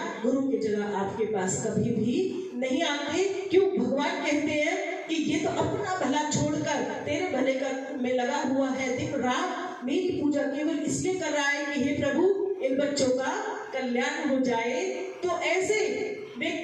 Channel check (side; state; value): both; identical; correlation 1.00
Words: गुरु की जगह आपके पास कभी भी नहीं आते। क्यों? भगवान कहते हैं कि ये तो अपना भला छोड़कर तेरे भले का में लगा हुआ है, दिन रात मेरी पूजा केवल इसलिए कर रहा है कि हे प्रभु इन बच्चों का कल्याण हो जाए। तो ऐसे